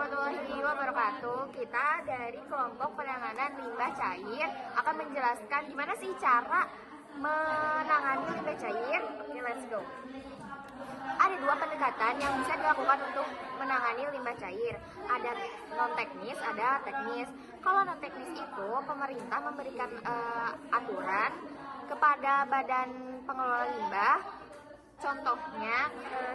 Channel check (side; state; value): both; identical; correlation 1.00